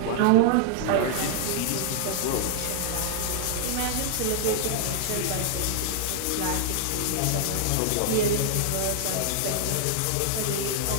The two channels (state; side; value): different; both; correlation -0.01